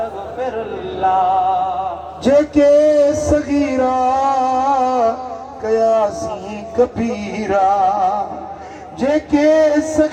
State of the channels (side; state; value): both; identical; correlation 1.00